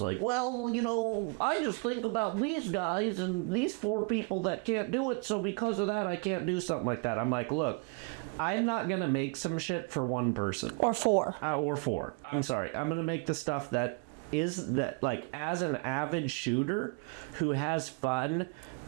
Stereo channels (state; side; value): quieter; left; 35.0 dB